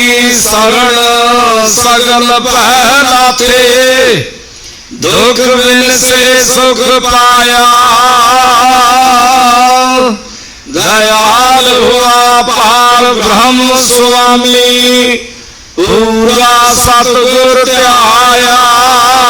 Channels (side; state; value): both; identical; correlation 1.00